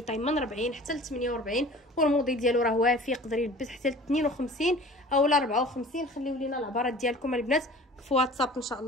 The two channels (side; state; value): both; normal; correlation 0.44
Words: طاي من 40 حتى ل 48، والموديل ديالو راه وافي، يقدر يلبس حتى ل 52 اولا 54. خليو لينا العبارات ديالكم البنات في واتساب ان شاء